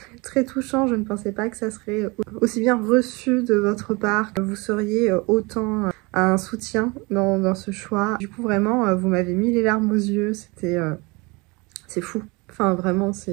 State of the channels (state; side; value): quieter; left; 26.5 dB